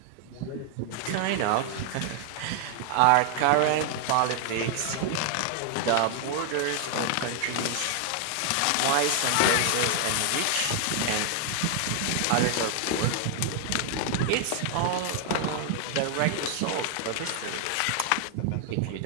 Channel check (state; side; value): different; both; correlation 0.00